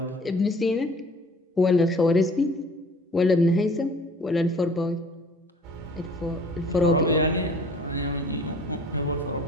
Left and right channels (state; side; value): normal; both; correlation 0.50